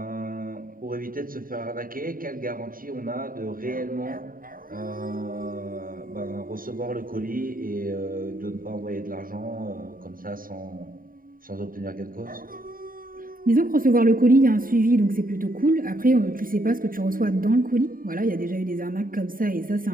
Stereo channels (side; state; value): left; late; 0.41 ms